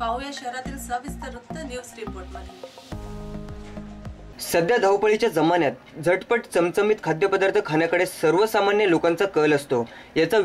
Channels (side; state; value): both; identical; correlation 1.00